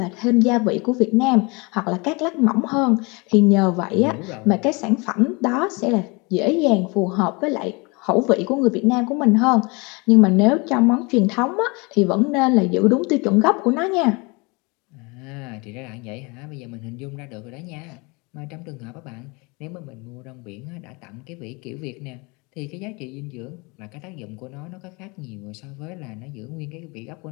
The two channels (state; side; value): quieter; right; 28.0 dB